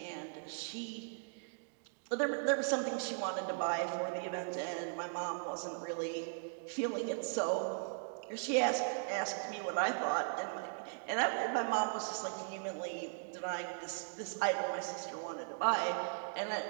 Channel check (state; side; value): silent; left; digital silence